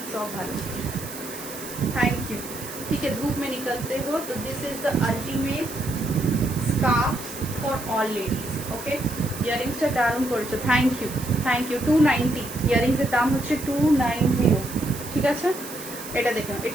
ऑफ भालो, थैंक यू। ठीक है, धूप में निकलते हो तो this is the ultimate scarf for all ladies. Okay, ইয়ারিংসটা দারুণ করেছো, থ্যাংক ইউ, থ্যাংক ইউ। 290 ইয়ারিংসের দাম হচ্ছে 290। ঠিক আছে, এটা দেখুন,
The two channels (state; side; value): noise; right; hiss, 12 dB below the sound